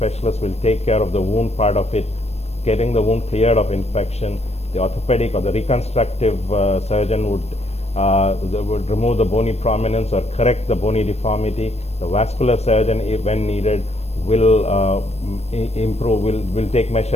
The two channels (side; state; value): right; late; 0.31 ms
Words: will take care of the wound part of it, getting the wound cleared of infection. The orthopedic or the reconstructive surgeon would remove the bony prominence or correct the bony deformity. The vascular surgeon, when needed, will take